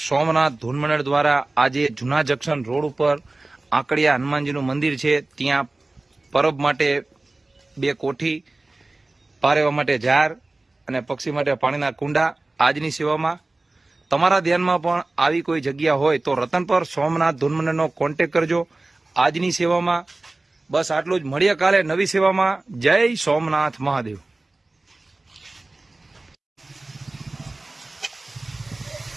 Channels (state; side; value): quieter; left; 3.1 dB